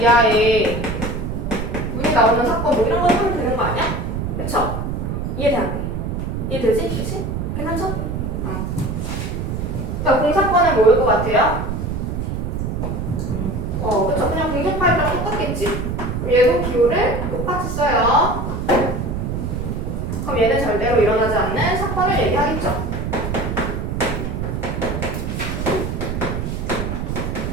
문이 나오는 사건 뭐 이런 거 하면 되는 거 아니야? 그쵸? 이해되는데? 이해되지? 그치? 괜찮죠? 그러니까 공사건은 뭐일 것 같아요? 그쵸? 그냥 공격 파일이랑 똑같겠지? 그럼 얘도 기호를 똑같이 써요. 그럼 얘는 절대로 일어나지 않는 사건을 얘기하겠죠?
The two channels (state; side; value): noise; right; rumble, 3 dB below the sound